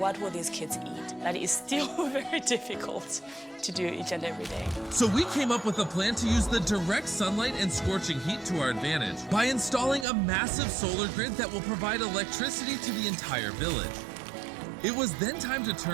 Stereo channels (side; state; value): left; drops out; at 10.1 s